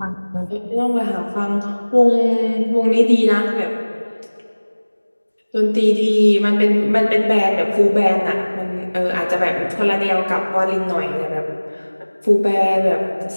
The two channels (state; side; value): inverted; both; correlation -1.00